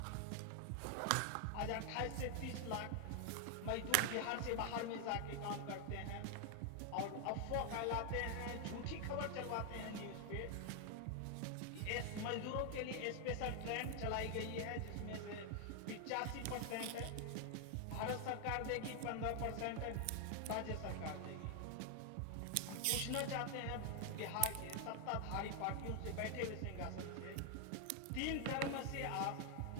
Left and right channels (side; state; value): both; different; correlation 0.00